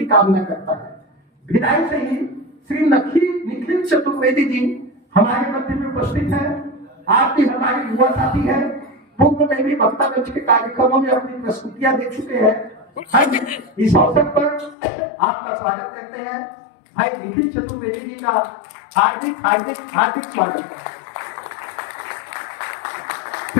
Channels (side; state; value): right; drops out; at 14.8 s